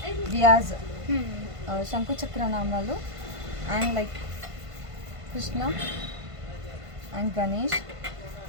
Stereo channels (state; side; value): late; left; 1.5 ms